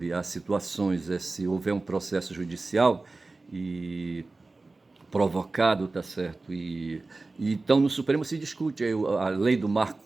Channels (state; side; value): quieter; left; 3.4 dB